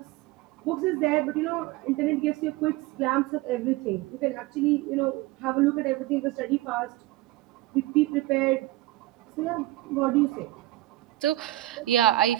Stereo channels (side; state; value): left; quieter; 17.1 dB